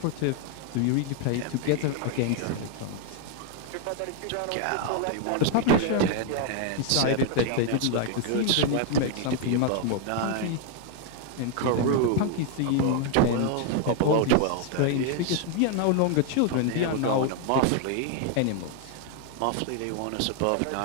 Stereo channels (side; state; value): both; different; correlation 0.00